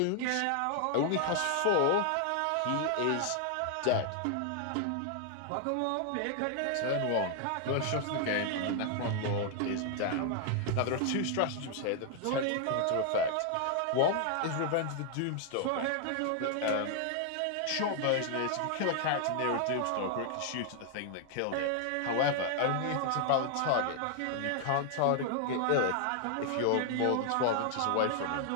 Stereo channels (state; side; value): different; both; correlation 0.00